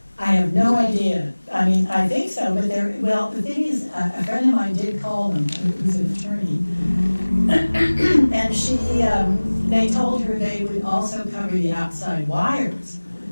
I have no idea. I think so, but the thing is, a friend of mine did call them, who's an attorney, and they told her they would also cover the outside wires,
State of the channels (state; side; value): inverted; both; correlation -1.00